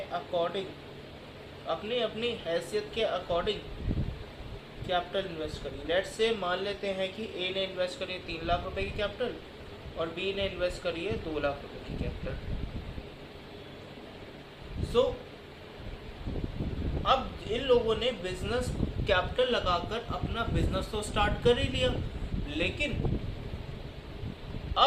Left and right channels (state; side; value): identical; both; correlation 1.00